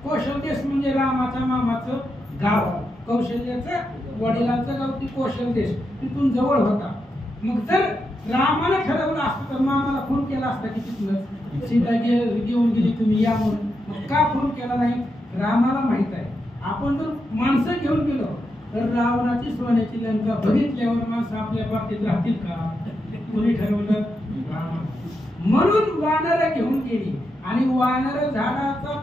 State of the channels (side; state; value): both; normal; correlation 0.85